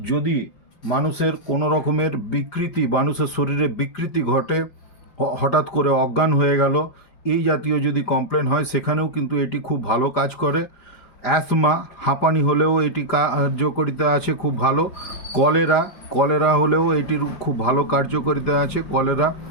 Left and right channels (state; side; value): late; right; 5.0 ms